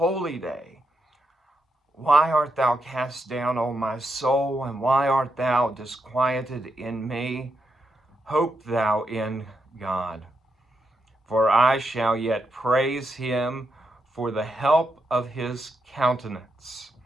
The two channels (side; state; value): both; normal; correlation 0.83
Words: day. Why art thou cast down, O my soul, and why art thou disquieted in me? Hope thou in God, for I shall yet praise him for the help of his countenance.